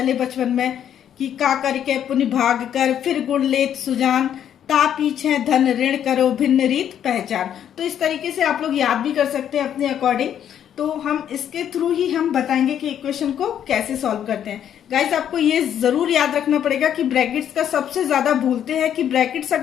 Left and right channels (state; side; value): quieter; right; 9.7 dB